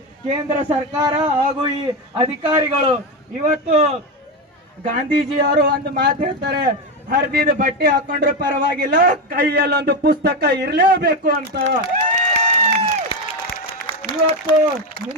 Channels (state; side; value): normal; both; correlation 0.12